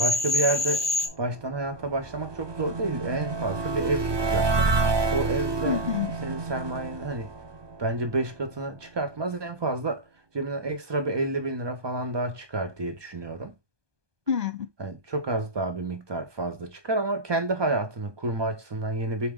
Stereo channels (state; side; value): late; left; 1.2 ms